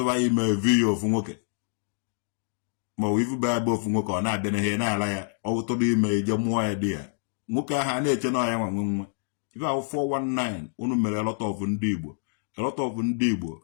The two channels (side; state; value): right; silent; 60 dB below the other